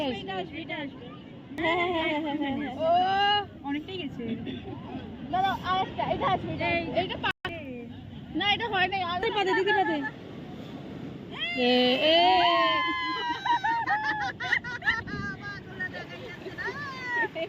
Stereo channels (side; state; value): both; identical; correlation 1.00